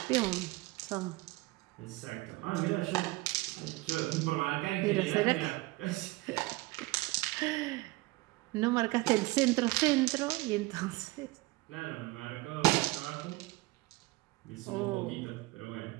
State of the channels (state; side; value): quieter; left; 21.1 dB